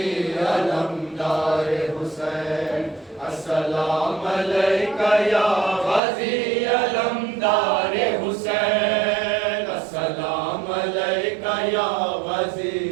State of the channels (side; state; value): left; drops out; at 6.0 s